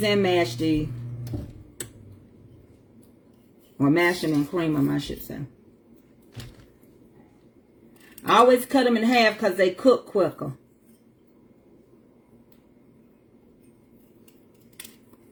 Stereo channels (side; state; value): both; identical; correlation 1.00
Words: and mash these. Or mash them and cream them, I should say. I always cut them in half because they cook quicker.